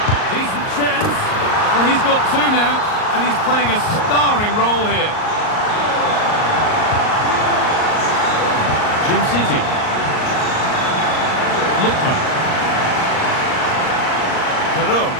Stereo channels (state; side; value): late; right; 38 ms